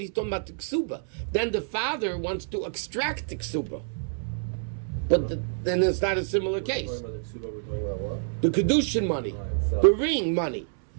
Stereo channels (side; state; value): left; silent; 60 dB below the other